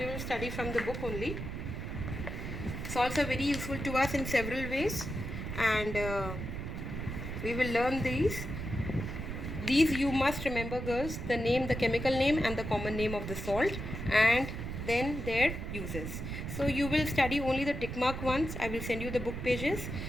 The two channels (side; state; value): right; noise; rumble, 6 dB below the sound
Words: will study from the book only. Salts are very useful to us in several ways, and we will learn these. These you must remember girls, the name, the chemical name and the common name of the salt, and then their uses. So you will study only the tick mark ones. I will send you the book pages.